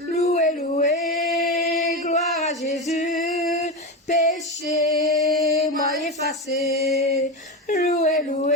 loué, gloire à Jésus, péché, moi effacé. Loué,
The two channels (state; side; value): normal; both; correlation 0.18